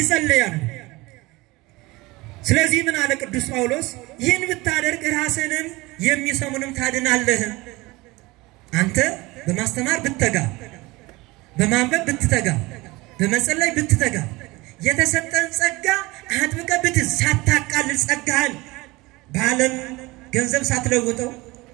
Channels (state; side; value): quieter; left; 21.9 dB